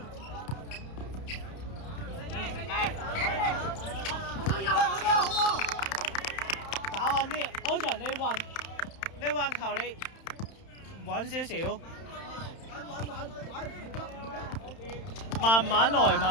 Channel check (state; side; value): late; right; 31 ms